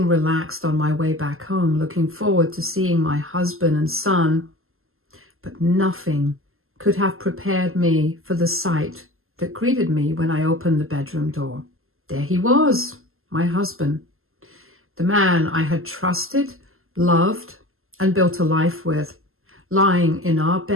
relaxed on my way back home, looking forward to seeing my husband and son, but nothing could have prepared me for the sight that greeted me when I opened the bedroom door. There he was, my husband, the man I had trusted, loved, and built a life with, lying in our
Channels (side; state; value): left; late; 0.62 ms